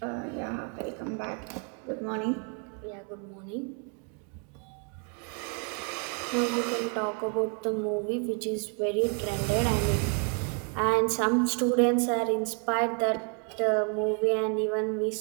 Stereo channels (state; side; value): quieter; left; 39.4 dB